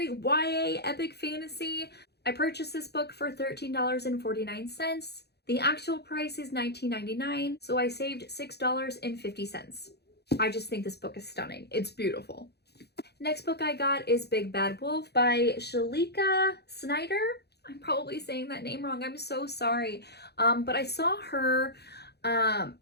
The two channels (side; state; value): right; late; 0.48 ms